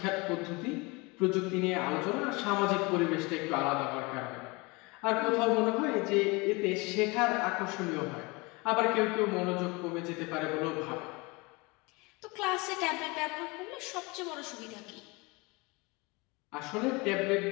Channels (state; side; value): quieter; right; 26.1 dB